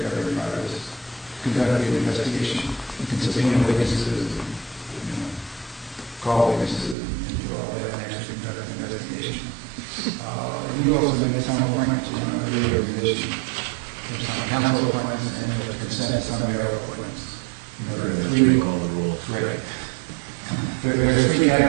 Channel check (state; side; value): drops out; left; at 7.0 s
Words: government powers. you also make some appointments, you know, every year position. There's some council appointments and there's consent, some mayoral appointments. You know, there are three. All the rules. Right. There are three